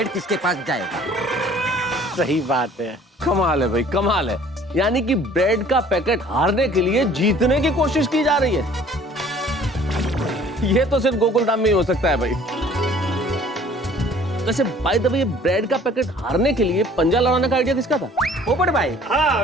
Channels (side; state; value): both; normal; correlation 0.53